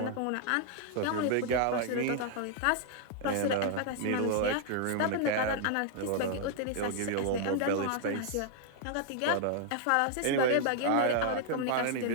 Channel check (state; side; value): different; both; correlation -0.01